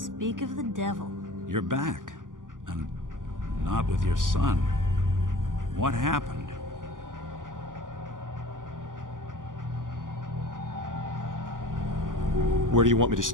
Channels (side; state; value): left; late; 0.88 ms